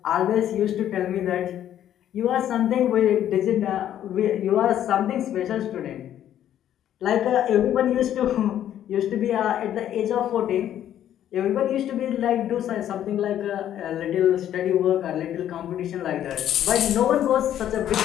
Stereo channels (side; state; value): right; quieter; 11.1 dB